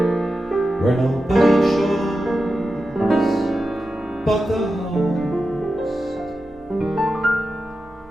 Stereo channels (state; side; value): normal; both; correlation 0.91